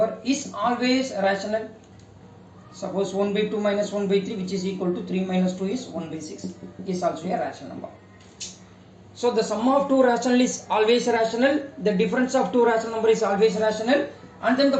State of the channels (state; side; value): identical; both; correlation 1.00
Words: is always rational. Suppose 1 by 2 minus 1 by 3, which is equal to 3 minus 2 is 1 by 6, is also a rational number. So the sum of two rational is always rational, the difference of two rational number is always rational, and then the